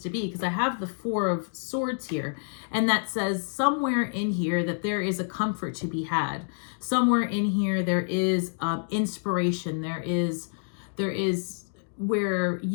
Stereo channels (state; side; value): silent; right; digital silence